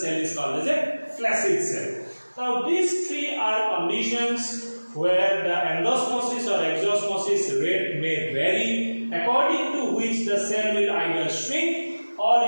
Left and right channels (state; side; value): inverted; both; correlation -1.00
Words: is called as a flaccid cell. Now these three are conditions where the endosmosis or exosmosis rate may vary, according to which the cell will either shrink or